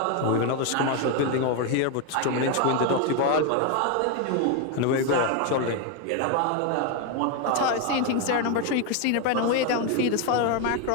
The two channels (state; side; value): different; both; correlation 0.01